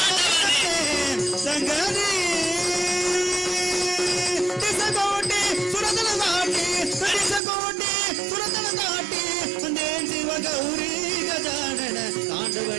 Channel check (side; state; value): left; drops out; at 7.4 s